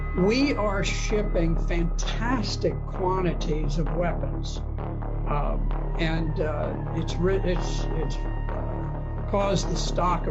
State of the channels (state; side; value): identical; both; correlation 1.00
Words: we are shipping fantastic quantities of weapons, and it's caused the stock